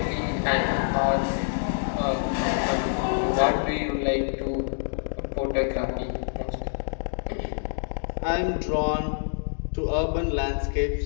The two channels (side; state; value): right; silent; digital silence